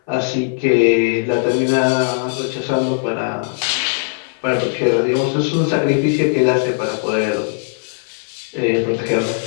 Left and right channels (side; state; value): right; silent; 59 dB below the other